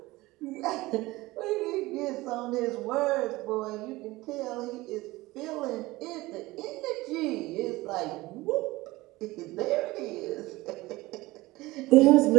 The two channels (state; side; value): quieter; left; 19.7 dB